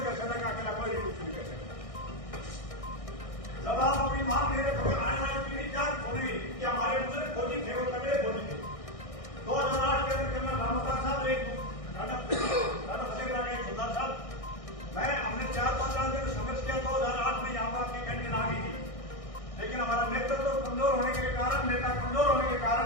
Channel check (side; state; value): right; late; 1.6 ms